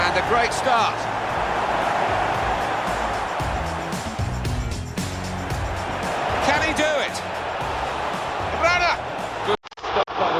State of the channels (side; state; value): both; identical; correlation 1.00